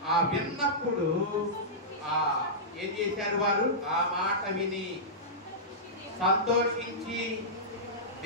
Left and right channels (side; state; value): both; normal; correlation -0.14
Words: విన్నప్పుడు ఏం చేశారు? వారు ఆ మాట విని సంతోషించి